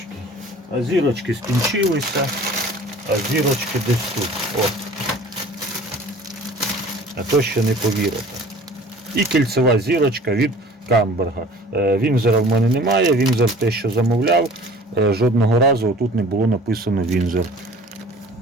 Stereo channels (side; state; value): both; normal; correlation 0.47